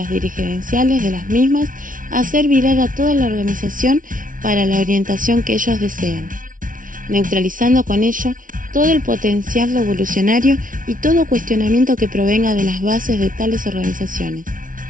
dirigenciales de las mismas, hacer virar a toda la organización para la orientación que ellos desean, neutralizando con ello todo el potencial revolucionario y todo cuestionamiento que provenga de las bases de tales organizaciones.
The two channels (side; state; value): left; late; 0.39 ms